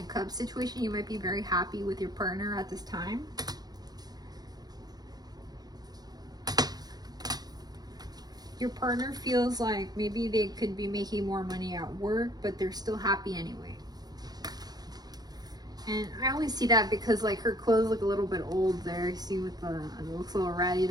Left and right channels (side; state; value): left; late; 0.19 ms